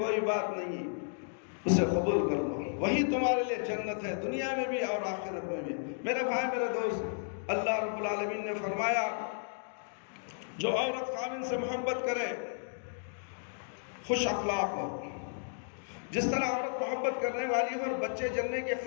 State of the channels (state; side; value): silent; right; digital silence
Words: بات نہیں، اسے قبول کر لو، وہی تمہارے لیے جنت ہے، دنیا میں بھی اور آخرت میں بھی۔ میرے بھائی، میرے دوست، اللہ رب العالمین نے فرمایا جو عورت خاوند سے محبت کرے خوش اخلاق ہو، جس طرح عورت محبت کرنے والی ہو اور بچے جننے کے